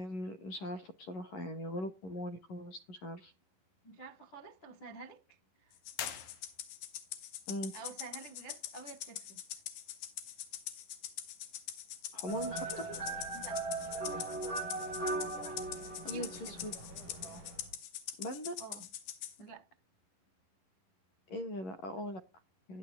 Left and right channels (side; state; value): right; late; 11 ms